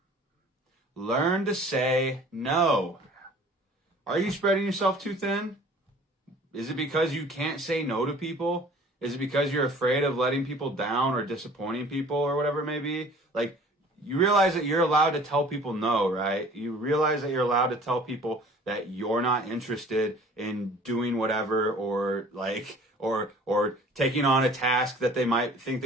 Learn to say no. Are you spreading yourself too thin? Is it because you can't say no to people? Is it because you're afraid of letting people down or disappointing people or whatever it may be? Like, you realize that you're allowed to tell people no, right? You realize that you're allowed to tell people that you're not interested in doing whatever, or taking on a task that they might think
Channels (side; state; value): both; normal; correlation 0.49